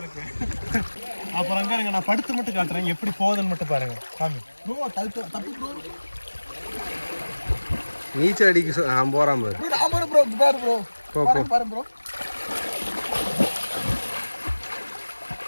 இருக்கு. அப்புறம் அங்கே நான் படுத்து மட்டும் காட்டுறேன், எப்படி போகுதுன்னு மட்டும் பாருங்க. சாமி நீச்சல் அடிக்க நான் போகிறான் ப்ரோ.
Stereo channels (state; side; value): inverted; both; correlation -1.00